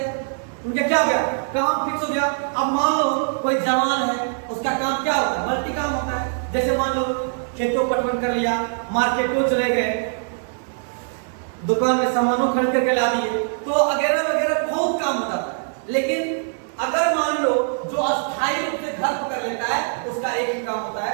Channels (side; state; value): left; silent; digital silence